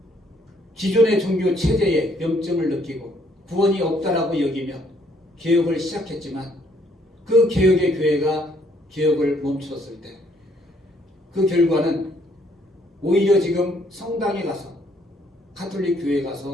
기존의 종교 체제에 염증을 느끼고 구원이 없다라고 여기며 개혁을 시작했지만 그 개혁의 교회가 개혁을 멈췄을 때 그 결과는 오히려 지금 성당에 가서 가톨릭 교회에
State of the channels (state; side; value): normal; both; correlation 0.67